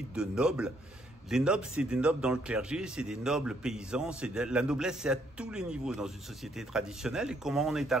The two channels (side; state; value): both; normal; correlation 0.70